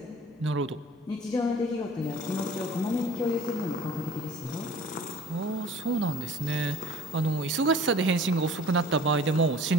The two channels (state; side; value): normal; both; correlation 0.49